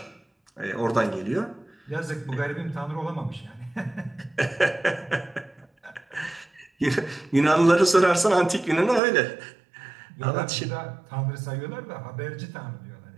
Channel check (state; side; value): drops out; left; at 9.0 s